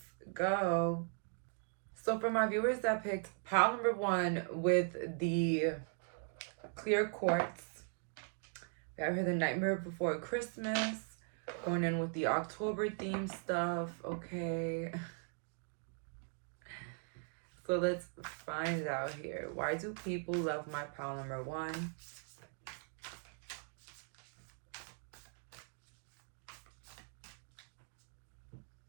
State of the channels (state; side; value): silent; left; 51 dB below the other